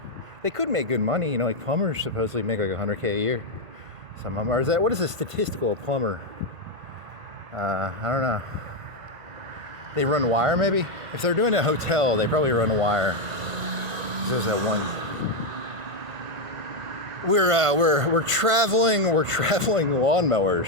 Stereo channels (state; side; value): late; left; 1.5 ms